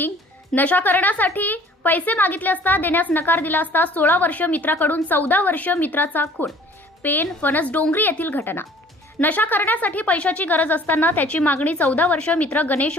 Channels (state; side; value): normal; both; correlation 0.52